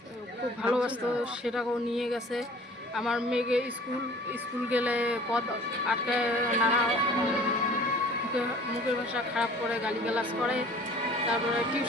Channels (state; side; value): normal; both; correlation 0.49